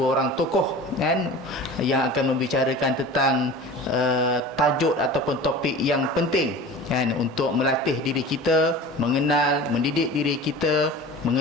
orang tokoh yang akan membicarakan tentang tajuk ataupun topik yang penting untuk melatih diri kita, mengenal, mendidik diri kita,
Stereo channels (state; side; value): normal; both; correlation 0.37